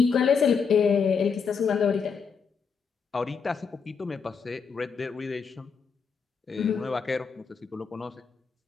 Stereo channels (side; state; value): right; quieter; 5.9 dB